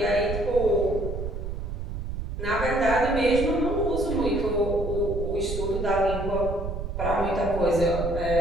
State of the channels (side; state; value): right; noise; rumble, 5 dB below the sound